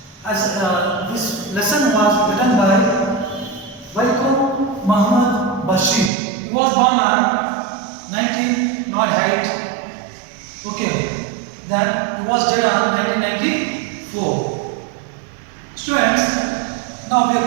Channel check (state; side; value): drops out; left; at 6.1 s